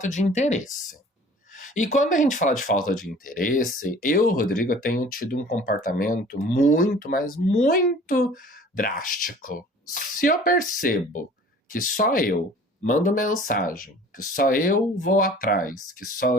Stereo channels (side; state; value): both; normal; correlation 0.47